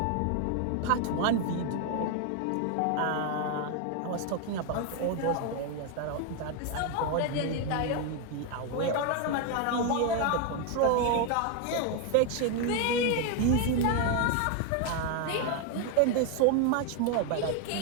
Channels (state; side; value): different; both; correlation 0.01